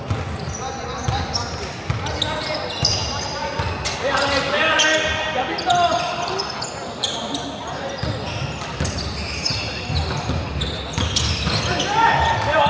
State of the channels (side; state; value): both; identical; correlation 1.00